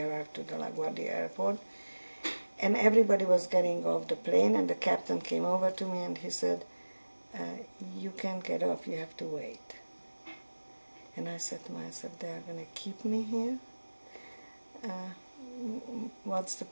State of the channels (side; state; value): both; inverted; correlation -1.00